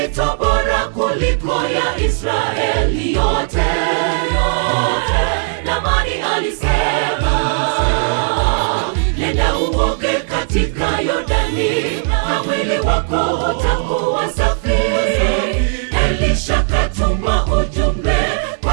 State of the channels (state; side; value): silent; left; 66 dB below the other